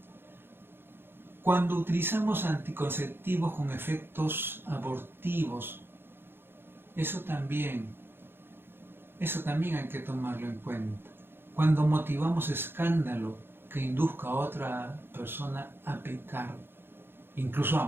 Cuando utilizamos anticonceptivos con efectos abortivos, eso también hay que tomarlo en cuenta. Cuando motivamos escándalo que induzca a otra persona a pecar, incluso a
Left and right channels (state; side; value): late; left; 0.10 ms